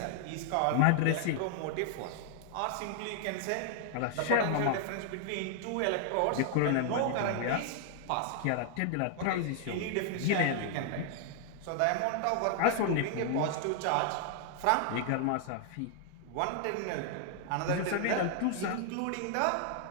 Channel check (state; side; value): different; both; correlation 0.00